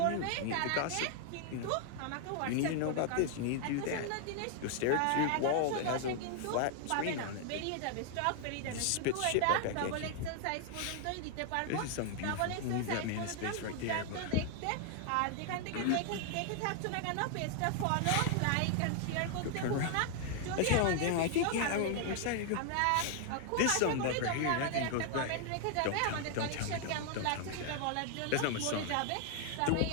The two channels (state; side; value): different; both; correlation 0.00